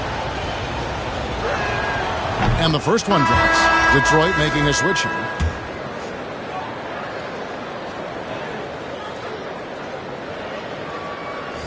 And the first one drops. Detroit making a switch here.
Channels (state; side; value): identical; both; correlation 1.00